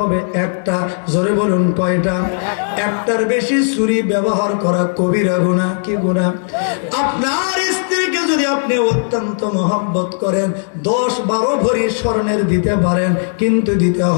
1টা। জোরে বলুন, কয়টা? 1টার বেশি ছুরি ব্যবহার করা কবিরা গুনাহ। কি গুনাহ? আপনার স্ত্রীকে যদি আপনি অত্যন্ত মহব্বত করেন, 10-12 ভরি স্বর্ণের দিতে পারেন, কিন্তু দিতে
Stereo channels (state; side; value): silent; right; digital silence